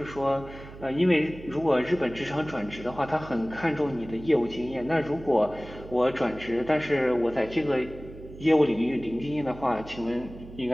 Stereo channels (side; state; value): right; noise; hum, 16 dB below the sound